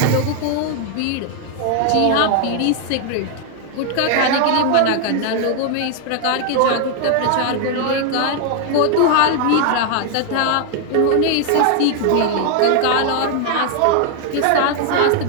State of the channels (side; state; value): both; different; correlation 0.00